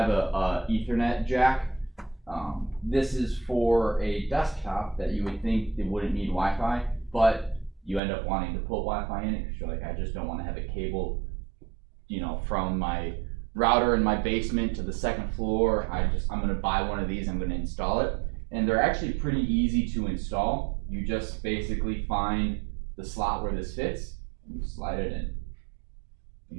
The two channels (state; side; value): drops out; left; at 8.0 s